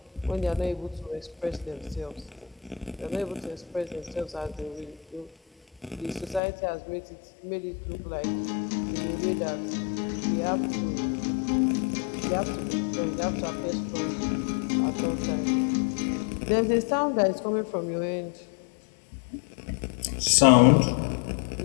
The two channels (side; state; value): right; drops out; at 6.4 s